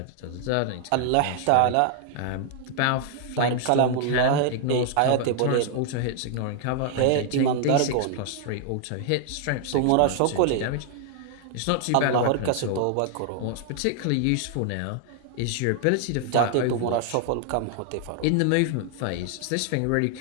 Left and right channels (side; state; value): both; different; correlation 0.00